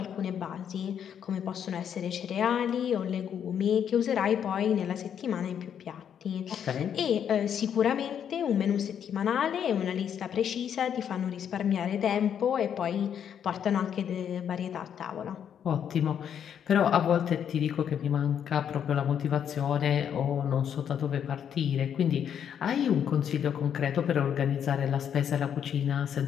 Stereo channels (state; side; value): quieter; right; 8.6 dB